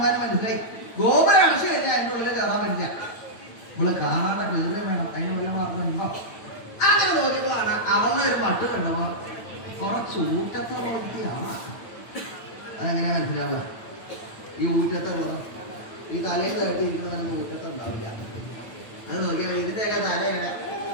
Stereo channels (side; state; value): right; late; 8.9 ms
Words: മനസ്സിലായി. ഗോപുരം അടച്ചു കഴിഞ്ഞാൽ അതിൻ്റെ ഉള്ളിൽ കയറാൻ പറ്റില്ല. ഇവള് കാണാതെ കയറുകയും വേണം. അതിന് വല്ല മാർഗമുണ്ടോ? അങ്ങനെ നോക്കിയപ്പോഴാണ് അവളുടെ ഒരു മട്ട് കണ്ടപ്പോ കുറച്ച് ഊറ്റത്തെ പോലെയാണ്. അതെങ്ങനെയാ മനസ്സിലാവുക? ഈ ഊറ്റത്തെ ഉള്ളത് ഈ തലയിൽ തട്ടിയിരിക്കുന്നതൊന്നും ഊറ്റത്തെ ഉണ്ടാവില്ല. അത് നോക്കിയാൽ ഇതിൻ്റെയൊക്കെ തല എങ്ങനെ